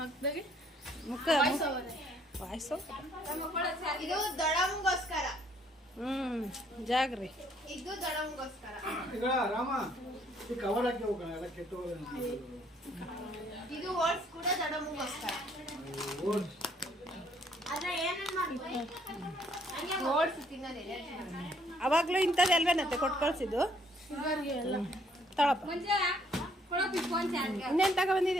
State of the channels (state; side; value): normal; both; correlation 0.65